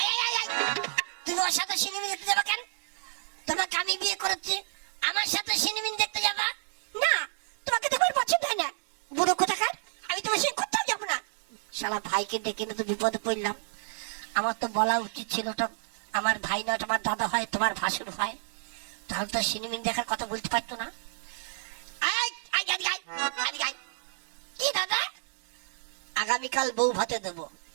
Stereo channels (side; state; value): left; silent; digital silence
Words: তুমি ওর সাথে সিনেমা দেখতে যাবা কেন? তোমাকে আমি বিয়ে করেছি, আমার সাথে সিনেমা দেখতে যাবা? না তোমাকে তোমার পছন্দ হয় না, বুড়ো কোথাকার। আমি তোমার সঙ্গে কোথাও যাবো না। শালা ভাইকে ডেকে না তো বিপদে পড়লাম। আমার তো বলা উচিত ছিল, ওটা আমার ভাই না, তোমার দাদা হয়, তোমার ভাসুর হয়, তাহলে তো সিনেমা দেখার কথা বলতে পারতো না। কি দাদা? আগামীকাল বউ ভাতে দেবো।